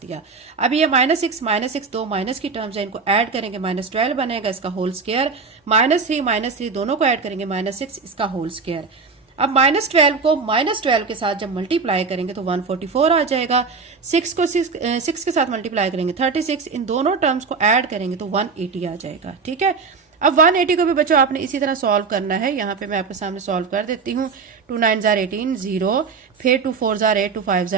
दिया। अब ये -6 दो माइनस की टर्म्स है, इनको ऐड करेंगे -12 बनेगा, इसका होल स्क्वायर। -3 दोनों को ऐड करेंगे -6, इसका होल स्क्वायर। अब -12 को -12 के साथ जब मल्टीप्लाई करेंगे तो 144 आ जाएगा। 6 को 6 के साथ मल्टीप्लाई करेंगे 36, इन दोनों टर्म्स को ऐड करेंगे तो 180 आ जाएगा, ठीक है। अब 180 को भी बच्चों आपने इसी तरह सॉल्व करना है। यहाँ पे मैं आपके सामने सॉल्व कर देती हूँ। 2 9s are 18, 0, फिर 2 4s are 8, 2 5s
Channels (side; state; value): left; quieter; 4.9 dB